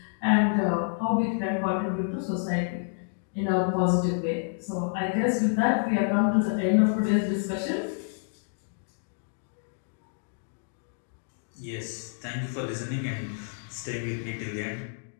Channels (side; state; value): right; silent; digital silence